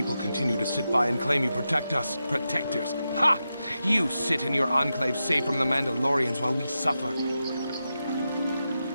continue to sit by and claim you protect us? Protectors? Ha! You sit in your enclave safe from the Mandalorians while we suffer.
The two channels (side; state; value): both; inverted; correlation -0.89